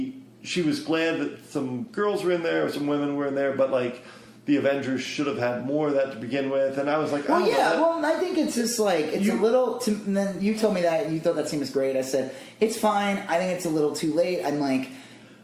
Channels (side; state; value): both; identical; correlation 1.00